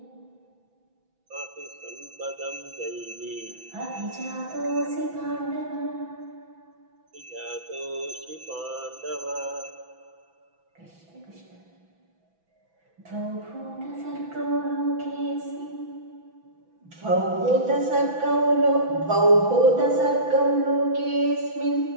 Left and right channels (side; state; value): left; late; 6.0 ms